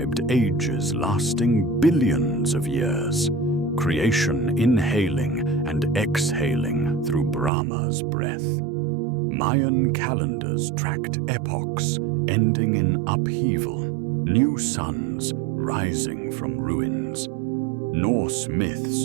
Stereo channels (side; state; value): left; drops out; at 7.5 s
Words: ages lasting billions of years, creation inhaling and exhaling through Brahma's breath. Mayan calendars tracked epochs ending in upheaval, new suns rising from ruins. Norse